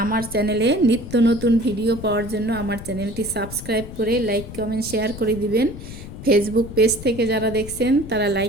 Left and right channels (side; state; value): left; noise; rumble, 12 dB below the sound